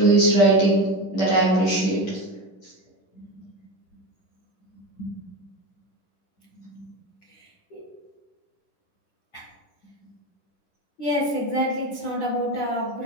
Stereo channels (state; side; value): late; right; 10 ms